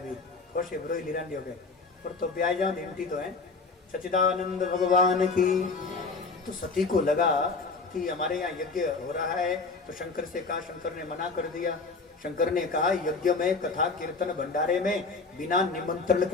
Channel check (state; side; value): quieter; right; 4.1 dB